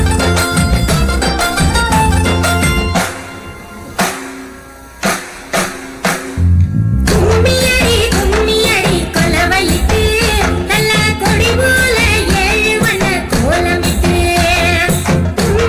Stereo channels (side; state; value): both; identical; correlation 1.00